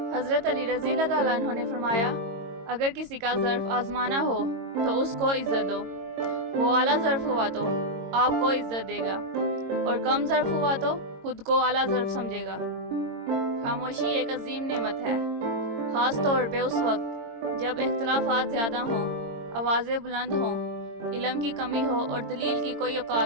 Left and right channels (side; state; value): left; late; 22 ms